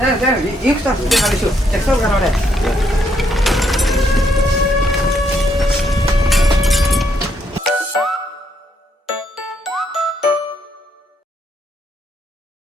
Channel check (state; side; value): normal; both; correlation 0.74